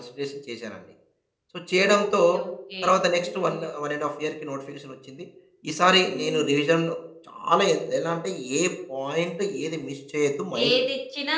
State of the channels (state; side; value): identical; both; correlation 1.00